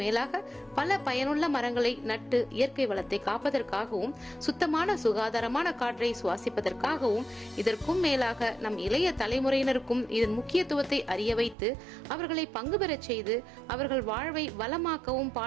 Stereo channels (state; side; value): drops out; left; at 11.6 s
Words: மேலாக பல பயனுள்ள மரங்களை நட்டு இயற்கை வளத்தை காப்பதற்காகவும் சுத்தமான சுகாதாரமான காற்றை சுவாசிப்பதற்காகவும் இதற்கும் மேலாக நம் இளைய தலைமுறையினருக்கும் இதன் முக்கியத்துவத்தை அறிய வைத்து அவர்களை பங்கு பெறச் செய்து அவர்கள் வாழ்வை வளமாக்கவும்